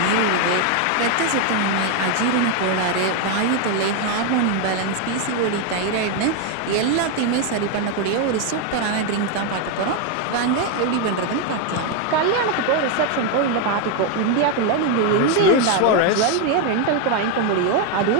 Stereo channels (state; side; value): different; both; correlation 0.01